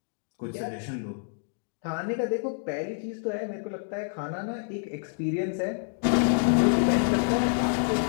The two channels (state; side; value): silent; right; digital silence